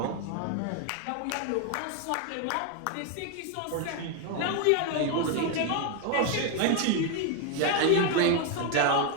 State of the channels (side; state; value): both; different; correlation 0.01